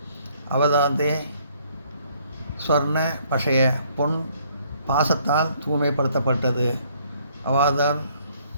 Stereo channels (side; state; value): both; inverted; correlation -0.64